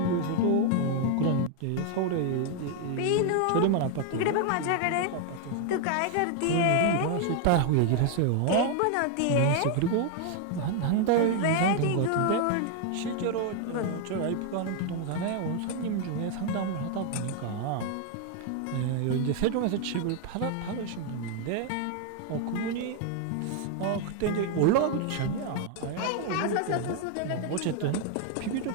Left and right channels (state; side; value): different; both; correlation 0.00